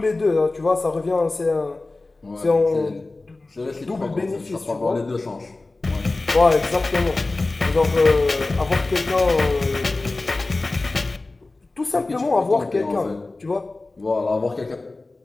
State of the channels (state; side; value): quieter; right; 3.2 dB